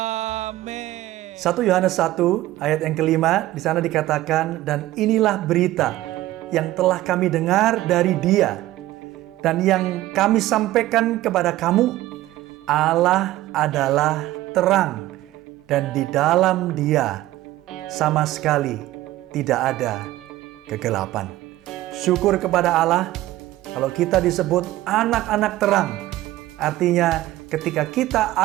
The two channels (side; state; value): left; quieter; 15.9 dB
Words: 1 Yohanes 1 ayat yang kelima, di sana dikatakan, dan inilah berita yang telah kami dengar dari Dia dan yang kami sampaikan kepada kamu, Allah adalah terang dan di dalam Dia sama sekali tidak ada kegelapan. Syukur kepada Allah kalau kita disebut anak-anak terang. Artinya ketika kita